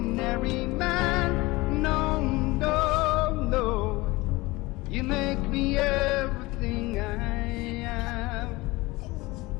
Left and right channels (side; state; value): right; quieter; 21.6 dB